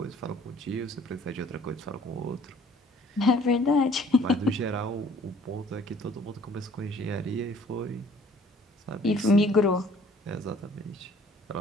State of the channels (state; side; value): normal; both; correlation 0.56